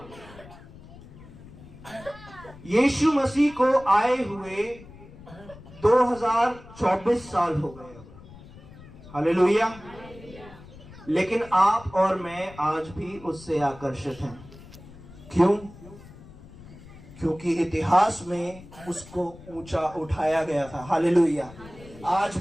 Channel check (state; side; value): noise; left; rumble, 19 dB below the sound